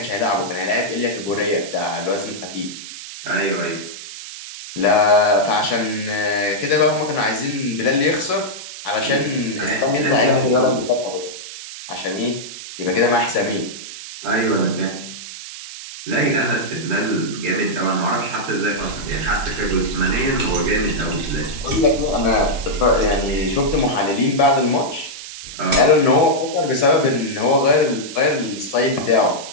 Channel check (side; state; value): right; noise; hiss, 12 dB below the sound